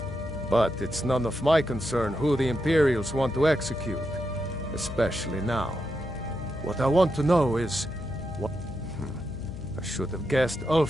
But it's none of my concern who the Imperials want to execute. Especially now. What I want to know is... what... I should have guessed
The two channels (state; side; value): noise; left; hum, 11 dB below the sound